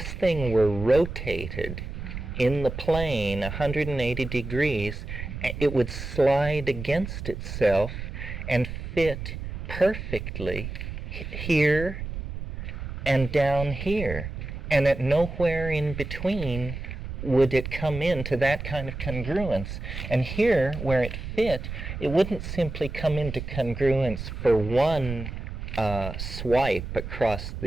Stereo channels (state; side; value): noise; right; rumble, 7 dB below the sound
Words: thing were rotated in the plane 180 degrees, it would slide against itself and fit perfectly here and down here. And at nowhere in between would it come into that kind of congruence. And here, where it fit, it wouldn't simply come into congruence for one swipe across